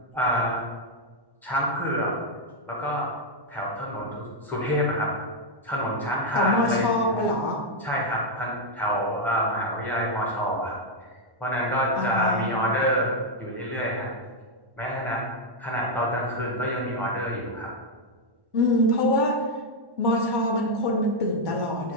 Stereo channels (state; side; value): late; left; 1.1 ms